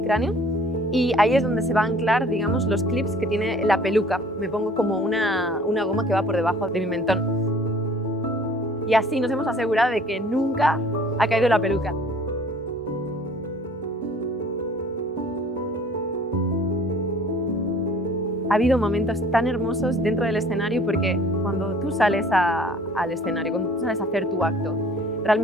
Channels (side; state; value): both; normal; correlation 0.52